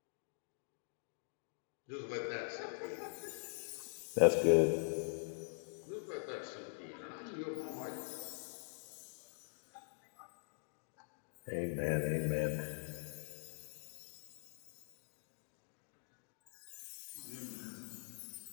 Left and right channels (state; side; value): silent; right; digital silence